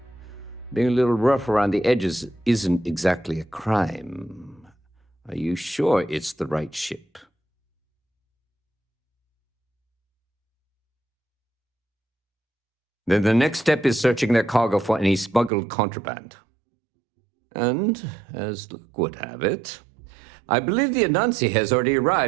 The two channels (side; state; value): left; drops out; at 15.5 s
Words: being a little rough around the edges isn't exactly a crime. Are you sure it's the right ship? Then the next step is searching their cargo for any smuggled contraband. And, as luck would have it, I believe the Anansi has already